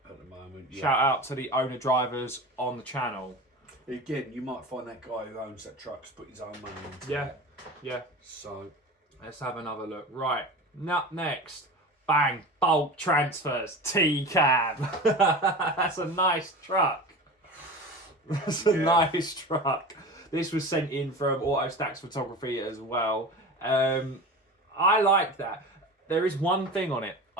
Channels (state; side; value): normal; both; correlation 0.31